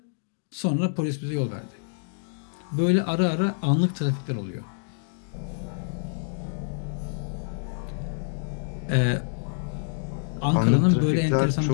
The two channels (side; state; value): right; silent; digital silence